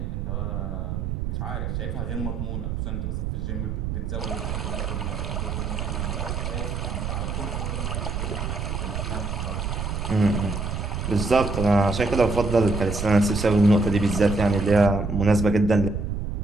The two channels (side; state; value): right; noise; rumble, 3 dB below the sound